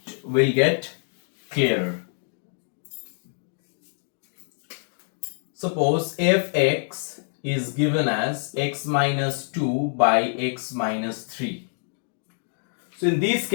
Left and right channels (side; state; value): right; silent; digital silence